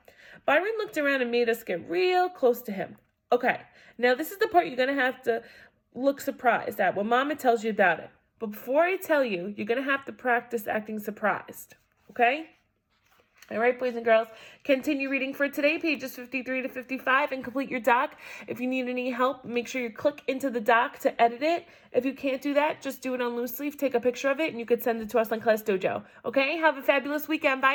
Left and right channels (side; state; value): both; identical; correlation 1.00